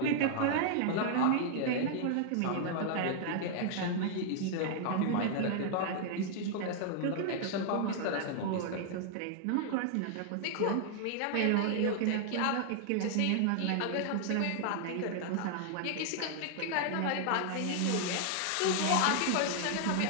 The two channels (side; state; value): both; different; correlation 0.00